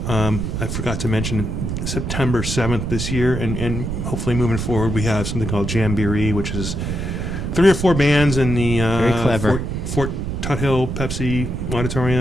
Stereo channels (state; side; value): noise; right; rumble, 3 dB below the sound